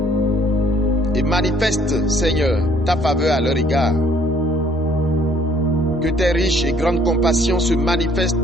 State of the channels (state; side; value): normal; both; correlation 0.61